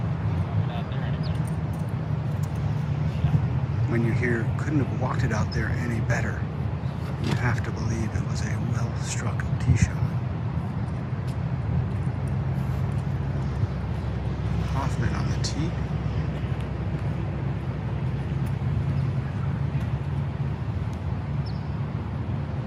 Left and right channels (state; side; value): identical; both; correlation 1.00